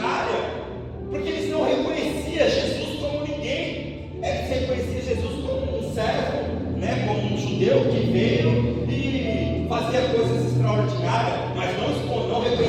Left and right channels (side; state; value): both; identical; correlation 1.00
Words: Porque eles não reconheciam Jesus como ninguém, eles reconheciam Jesus como um servo, né? Como um judeu que veio e fazia coisas extraordinárias, mas não